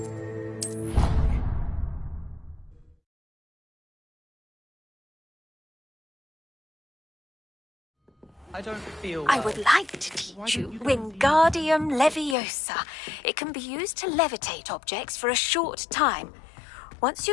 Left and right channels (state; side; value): drops out; right; at 12.4 s